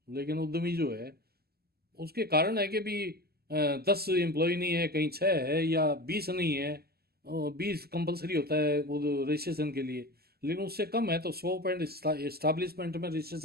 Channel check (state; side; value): late; left; 0.46 ms